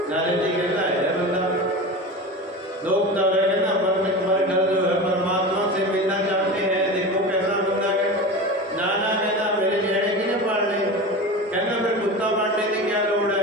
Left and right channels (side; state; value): both; normal; correlation 0.29